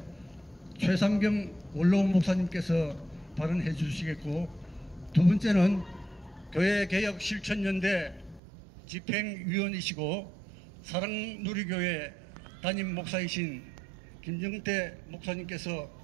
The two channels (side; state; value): left; drops out; at 8.4 s